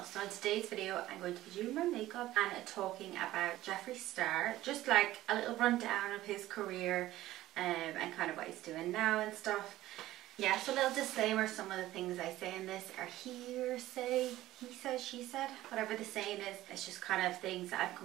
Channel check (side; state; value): left; quieter; 15.5 dB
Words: So in today's video I'm going to be doing my makeup and talking about Jeffree Star, just like a little rundown of his career and kind of what he's doing now and stuff. Yeah, so a little disclaimer, some of the things I say in this are hearsay, he said, she said, whatever the saying is. It's just kind of things that I've